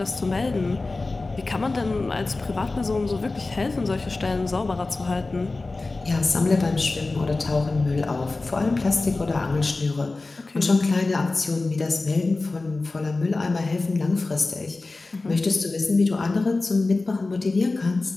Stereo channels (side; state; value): right; quieter; 3.4 dB